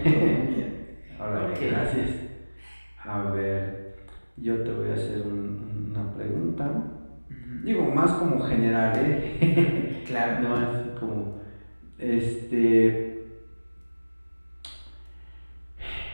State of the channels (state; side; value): inverted; both; correlation -1.00